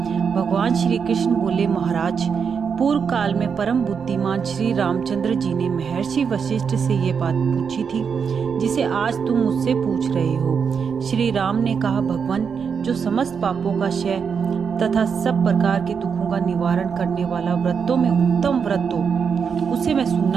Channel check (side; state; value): left; quieter; 6.4 dB